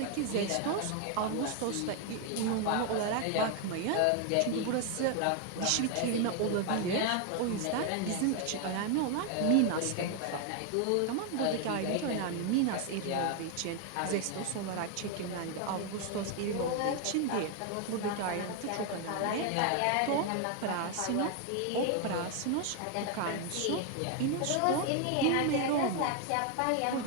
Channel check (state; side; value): different; both; correlation 0.01